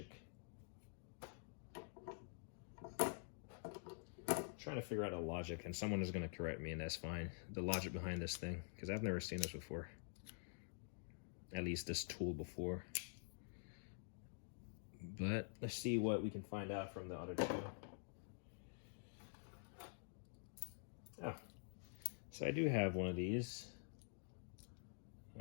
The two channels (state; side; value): silent; right; digital silence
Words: Trying to figure out a logic, and someone is going to correct me, and that's fine. The logic behind this thing, because I've never seen this before. At least this tool before. But let's see what we can find out from the other two. Oh, so I do have one of these